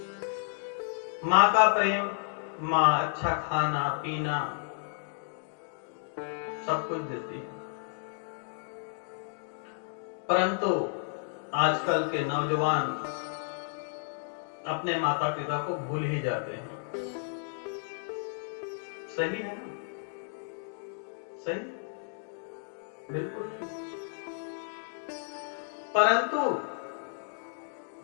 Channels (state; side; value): silent; right; digital silence